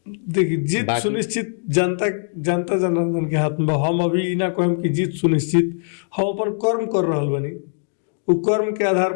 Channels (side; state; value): right; silent; digital silence